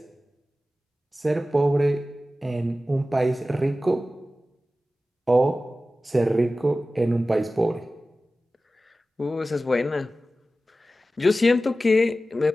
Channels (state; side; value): normal; both; correlation 0.95